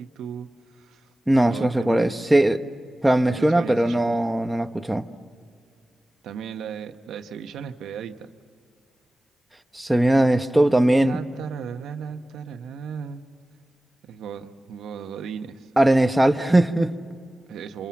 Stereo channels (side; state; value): both; normal; correlation 0.96